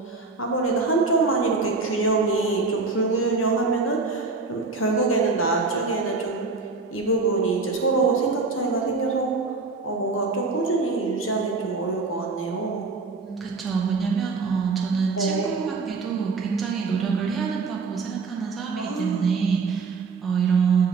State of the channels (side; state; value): left; quieter; 4.1 dB